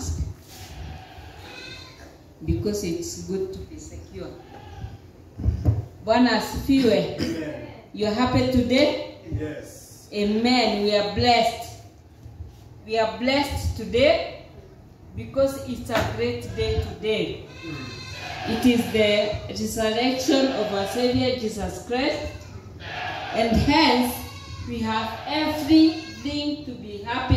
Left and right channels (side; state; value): both; identical; correlation 1.00